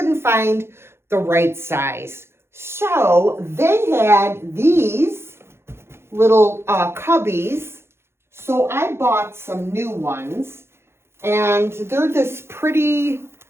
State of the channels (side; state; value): left; late; 0.12 ms